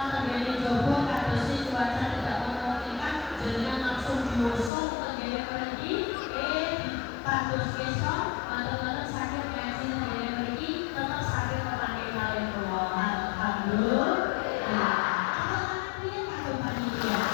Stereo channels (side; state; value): right; drops out; at 4.7 s